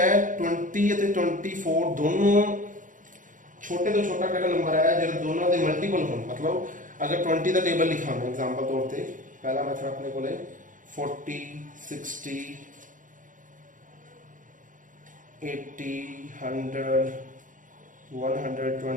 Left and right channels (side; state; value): left; late; 0.38 ms